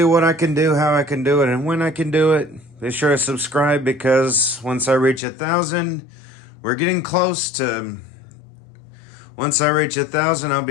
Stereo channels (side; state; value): right; drops out; at 5.2 s